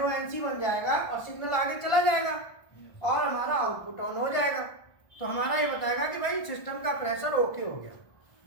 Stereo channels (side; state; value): right; late; 1.4 ms